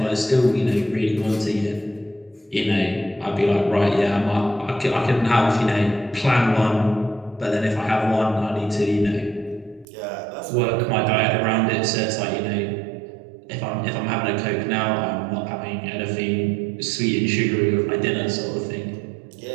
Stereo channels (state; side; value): drops out; left; at 9.9 s